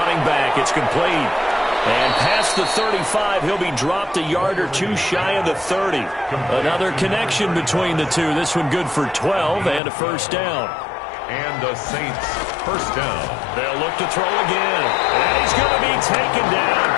back. It's complete. And past the 35, he'll be dropped a yard or two shy of the 30. Another connection between the two. This one good for 12 and a first down. And the Saints first down. They'll look to throw again. And he's going to be taken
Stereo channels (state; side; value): drops out; right; at 9.8 s